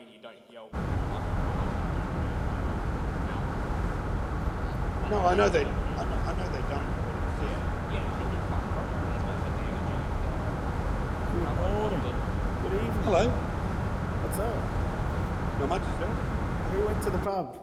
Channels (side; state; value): both; identical; correlation 1.00